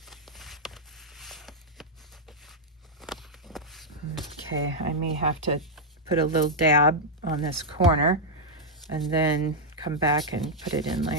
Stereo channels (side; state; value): both; normal; correlation -0.04